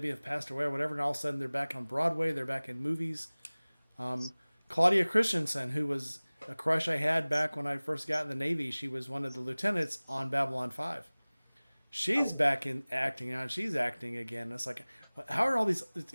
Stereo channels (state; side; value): inverted; both; correlation -1.00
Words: have passed away or whatever, and all of a sudden they're back on Broadway, they're back in movies. Claudia Christensen, who was a crush I had back when I first got in the Navy, she was one of the lieutenants on Babylon 5. She's back in acting now, and she's acting again. It's like, how are all these?